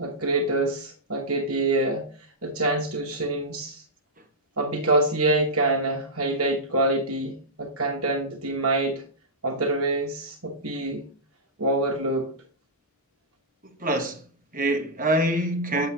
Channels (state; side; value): normal; both; correlation -0.12